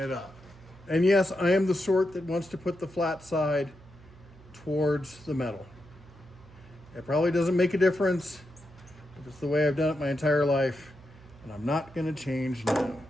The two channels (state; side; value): noise; right; hum, 22 dB below the sound